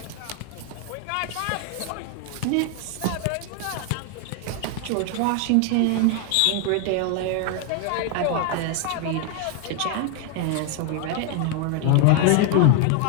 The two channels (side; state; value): both; different; correlation 0.00